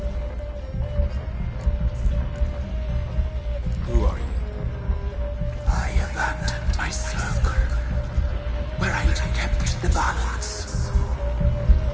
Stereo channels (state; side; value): identical; both; correlation 1.00